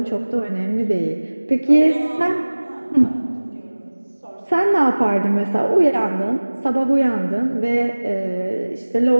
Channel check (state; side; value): inverted; both; correlation -1.00